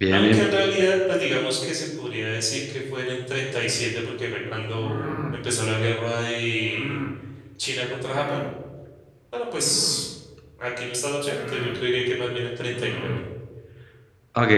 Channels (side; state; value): both; identical; correlation 1.00